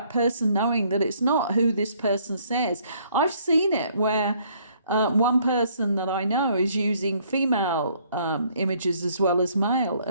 person knowing that it's not who this person says. I've seen it where one person that I know is using female images as well as male,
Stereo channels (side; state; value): both; inverted; correlation -0.64